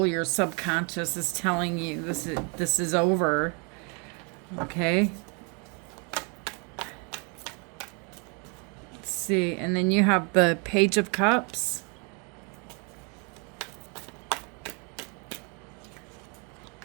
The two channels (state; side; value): quieter; left; 34.6 dB